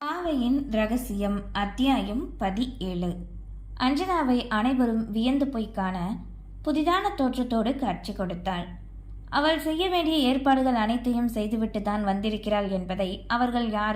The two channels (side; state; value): both; identical; correlation 1.00